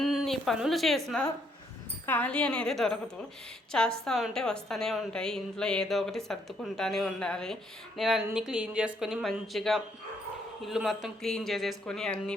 పనులు చేసినా ఖాళీ అనేది దొరకదు. చేస్తూ ఉంటే వస్తూనే ఉంటాయి. ఇంట్లో ఏదో ఒకటి సర్దుకుంటూనే ఉండాలి. నేను అన్నీ క్లీన్ చేసుకొని మంచిగా ఇల్లు మొత్తం క్లీన్ చేసేసుకొని అన్ని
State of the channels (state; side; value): normal; both; correlation 0.71